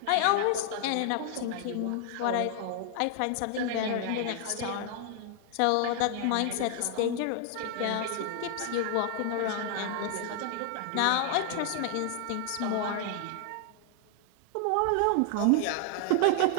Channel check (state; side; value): different; both; correlation 0.00